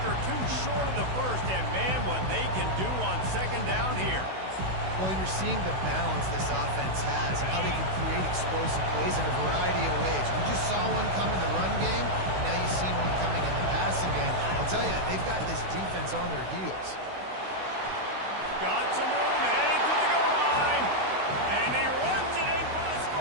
or two short of the first, and man, what they can do on 2nd down here. Well, you're seeing the balance this offense has, how they can create explosive plays in a variety of ways. We just saw one come in the run game, and now you've seen one coming in the passing game. I'll tell you, they've got this defense on their heels. Got some room, headed to the goal line, and he runs it in for the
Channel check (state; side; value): late; left; 16 ms